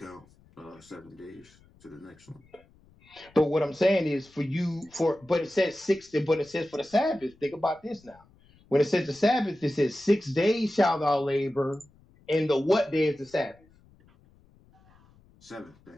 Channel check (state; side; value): noise; left; rumble, 29 dB below the sound